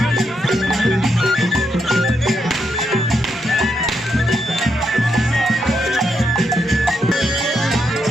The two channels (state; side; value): normal; both; correlation 0.80